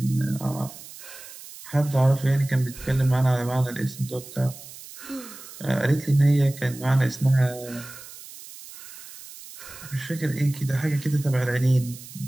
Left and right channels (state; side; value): noise; right; hiss, 16 dB below the sound